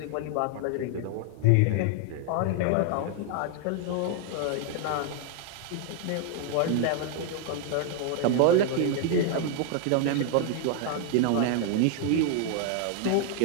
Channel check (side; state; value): both; different; correlation 0.00